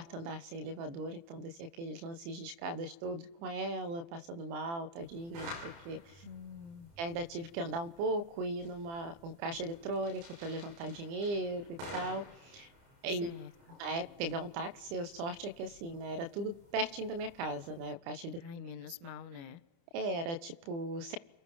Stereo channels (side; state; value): left; late; 30 ms